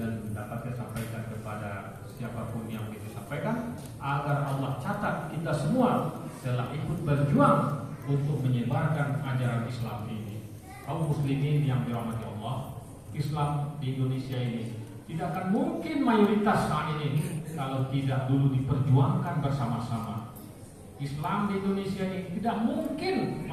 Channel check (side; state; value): both; identical; correlation 1.00